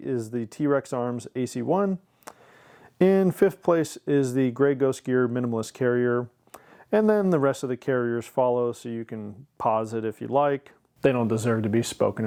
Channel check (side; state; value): both; identical; correlation 1.00